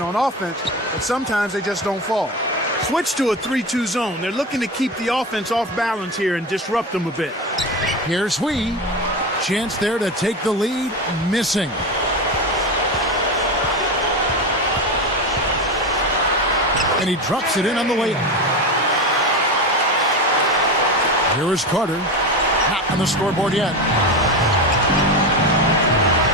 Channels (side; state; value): both; normal; correlation 0.21